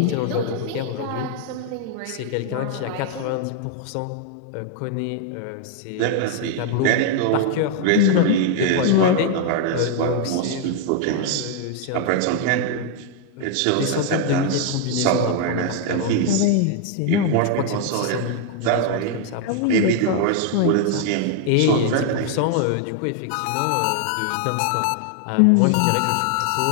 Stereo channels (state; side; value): different; both; correlation 0.00